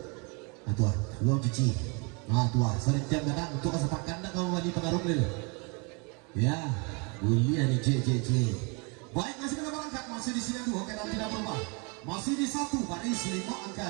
Tua belum cuci. Tua sering jam kadang untuk kesepakan dah kamu wali pengaruh dulu. Ya boleh nih cek. Baik masih kita berangkat masih di sini dua kita tidak berubah. Masih di 1 baris 5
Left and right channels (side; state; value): left; quieter; 32.0 dB